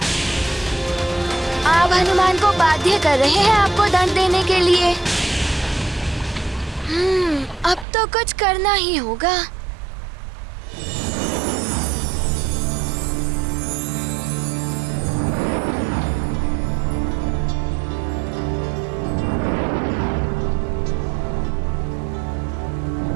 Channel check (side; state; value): left; drops out; at 7.9 s